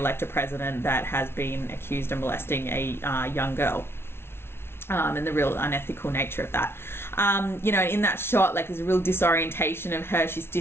a president that has been accused of molesting a young girl. And the real unethical nature of that. In that shot, like, there's a real disorientation of her. She's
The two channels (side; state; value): right; late; 0.12 ms